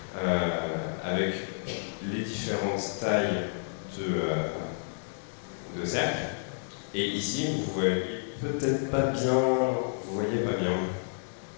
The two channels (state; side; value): silent; right; digital silence